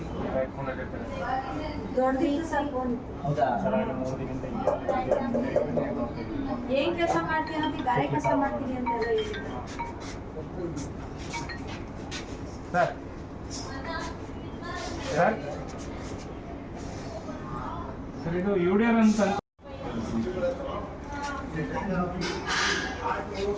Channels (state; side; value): identical; both; correlation 1.00